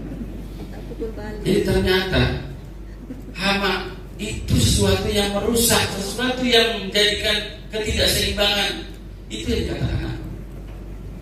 Jadi ternyata hama itu sesuatu yang merusak, sesuatu yang menjadikan ketidakseimbangan. Itu yang dikatakan.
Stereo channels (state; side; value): identical; both; correlation 1.00